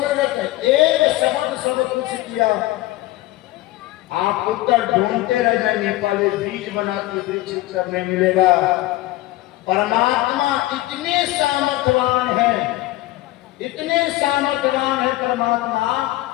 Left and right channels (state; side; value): quieter; right; 17.3 dB